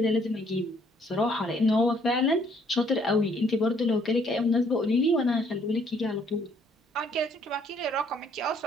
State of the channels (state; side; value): normal; both; correlation 0.65